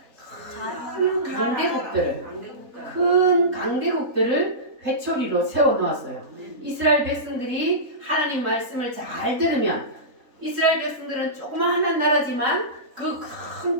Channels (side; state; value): left; late; 3.8 ms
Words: 큰 강대국들을 회초리로 세워 놓았어요. 이스라엘 백성들이 하나님 말씀을 잘 들으면 이스라엘 백성들은 조그마한 나라지만 그 큰